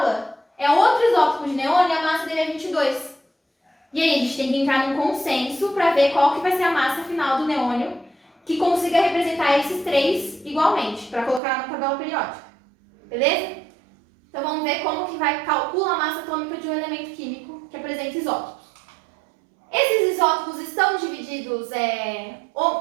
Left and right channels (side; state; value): left; drops out; at 11.4 s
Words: é outro isótopo de neônio e a massa dele é 22. E aí a gente tem que entrar num consenso para ver qual que vai ser a massa final do neônio que consiga representar esses três igualmente, para colocar na tabela periódica. Beleza? Então vamos ver como que vai calcular a massa atômica de um elemento químico que apresenta isótopos. Esses isótopos estão divididos